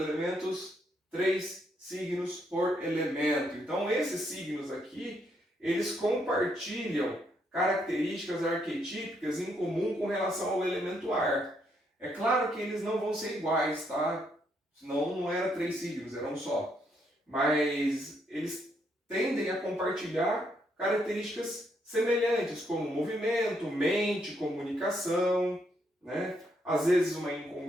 3 signos por elemento. Então, esses signos aqui, eles compartilham características arquetípicas em comum com relação ao elemento ar. É claro que eles não vão ser iguais, tá? Senão não era 3 signos, era um só. Mas eles tendem a compartilhar características semelhantes, como movimento, mente, comunicação, né? Às vezes uma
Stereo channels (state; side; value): normal; both; correlation 0.75